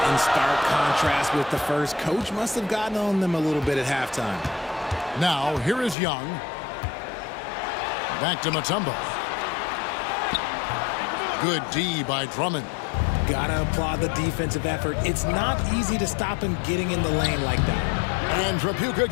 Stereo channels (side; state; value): right; drops out; at 6.0 s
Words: in stark contrast with the first. Coach must have gotten on them a little bit at halftime. Now, here is Young. Back to Mutombo. Good D by Drummond. Gotta applaud the defensive effort. It's not easy to stop him getting in the lane like that. And Trapuka